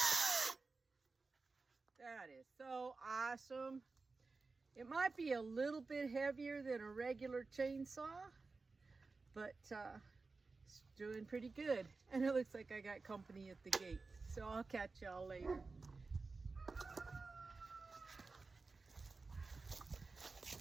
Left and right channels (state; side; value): quieter; left; 4.0 dB